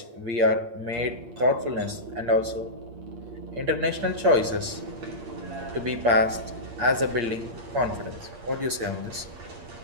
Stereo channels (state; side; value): late; left; 8.6 ms